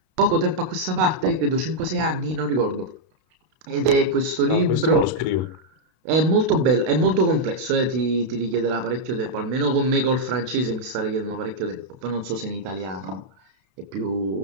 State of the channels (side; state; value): left; late; 32 ms